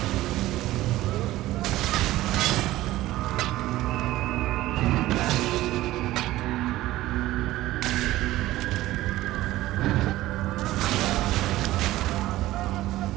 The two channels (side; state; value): left; quieter; 16.2 dB